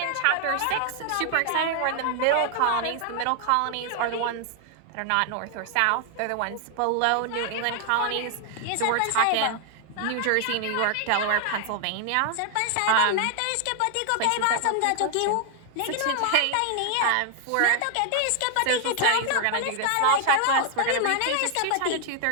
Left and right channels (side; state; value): both; different; correlation 0.00